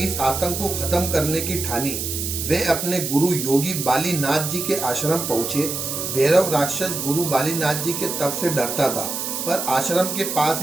आतंक को खत्म करने की ठानी। वे अपने गुरु योगी बालीनाथ जी के आश्रम पहुंचे। भैरव राक्षस गुरु बालीनाथ जी के तप से डरता था, पर आश्रम के पास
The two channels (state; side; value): noise; right; hiss, 4 dB below the sound